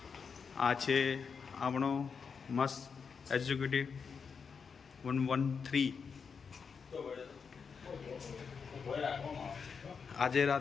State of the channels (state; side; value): quieter; right; 5.9 dB